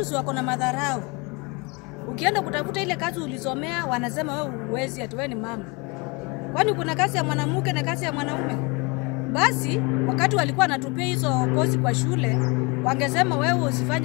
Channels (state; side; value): quieter; right; 28.3 dB